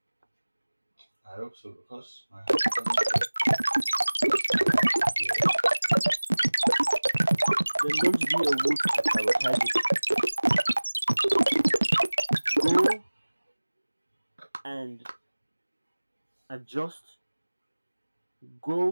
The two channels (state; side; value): inverted; both; correlation -1.00